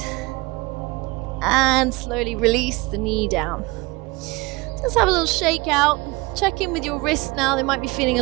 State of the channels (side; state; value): left; quieter; 23.9 dB